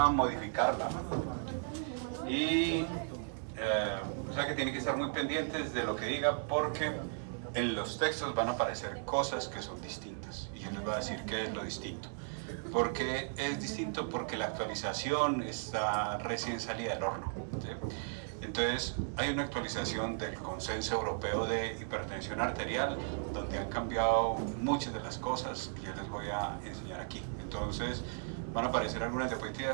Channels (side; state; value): left; silent; digital silence